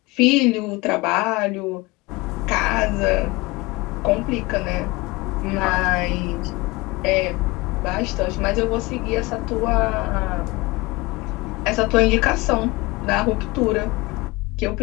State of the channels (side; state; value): right; quieter; 22.9 dB